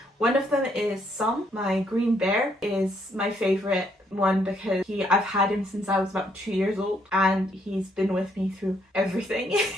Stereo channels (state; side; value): normal; both; correlation 0.71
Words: One of them is Sam, my green bear, is my favorite one because I've had him since I was about 2 years old, and he's been with me through everything